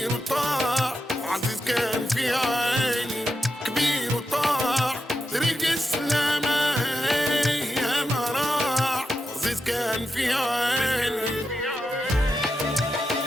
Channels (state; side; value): normal; both; correlation 0.88